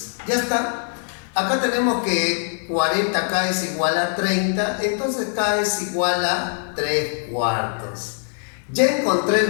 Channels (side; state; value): right; silent; 57 dB below the other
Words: Ya está. Acá tenemos que 40K es igual a 30, entonces K es igual a 3/4. Ya encontré el